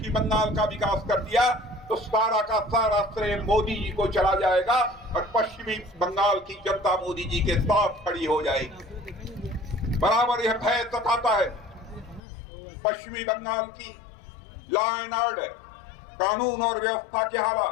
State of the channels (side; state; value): right; drops out; at 12.2 s